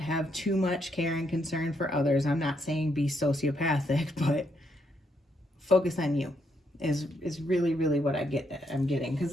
too much care and concern for others. I'm not saying be sociopathic, but focus on you is really, really what I'm getting. Because,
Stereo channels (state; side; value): normal; both; correlation 0.76